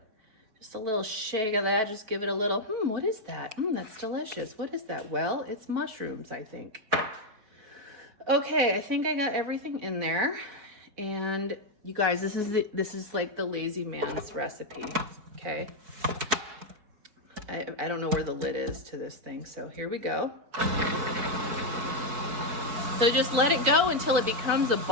just a little shake of that. Just give it a little, what is that? That's delicious. What is that? Well, it's mushrooms, I think. Okay, I think I got everything in there. And you guys, this is like the lazy man's recipe, okay? I don't know where the lid is to this thing, so here we go. So just let it go until it becomes a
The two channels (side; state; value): left; late; 4.5 ms